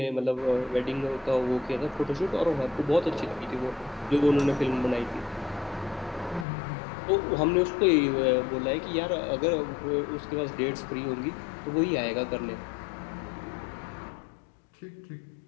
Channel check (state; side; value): drops out; right; at 6.5 s